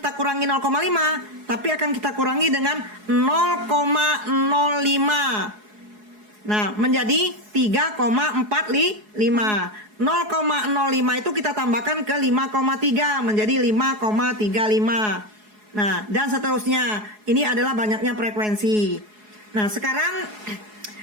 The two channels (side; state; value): left; late; 4.7 ms